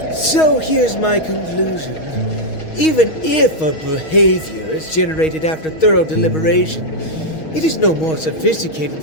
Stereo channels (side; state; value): right; late; 6.3 ms